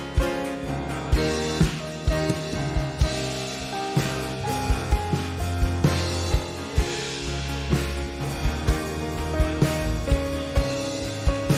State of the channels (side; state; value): both; identical; correlation 1.00